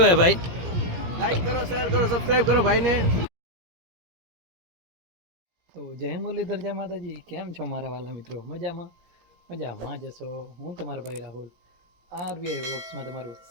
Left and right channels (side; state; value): left; late; 17 ms